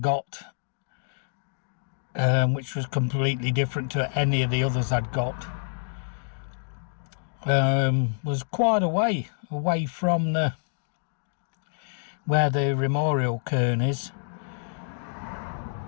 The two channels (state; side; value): silent; right; digital silence